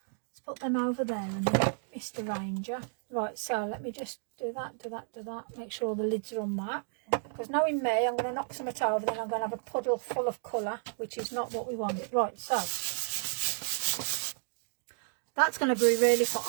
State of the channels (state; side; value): silent; left; digital silence